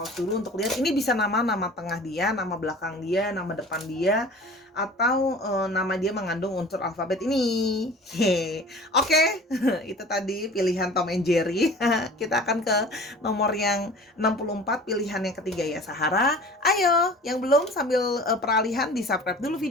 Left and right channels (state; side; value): normal; both; correlation 0.42